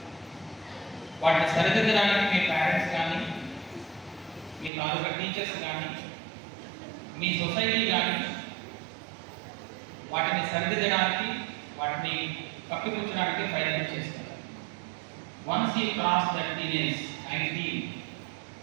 వాటిని సరిదిద్దడానికి మీ పేరెంట్స్ కానీ మీ తాలూకా టీచర్స్ కానీ మీ సొసైటీ కానీ వాటిని సరిదిద్దడానికి వాటిని కప్పిపుచ్చడానికి ప్రయత్నం చేస్తారు. Once you cross that teenage 19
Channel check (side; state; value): left; drops out; at 4.7 s